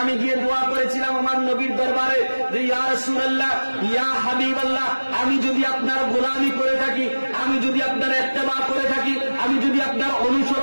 আমি গিয়ে দোয়া করেছিলাম আমার নবীর দরবারে যে ইয়া রাসূলুল্লাহ, ইয়া হাবিবাল্লাহ, আমি যদি আপনার গোলামি করে থাকি, আমি যদি আপনার ইত্তেবা করে থাকি, আমি যদি আপনার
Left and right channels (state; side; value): inverted; both; correlation -1.00